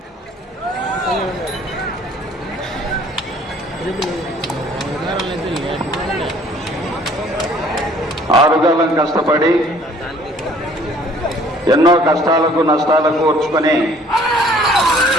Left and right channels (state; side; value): normal; both; correlation 0.56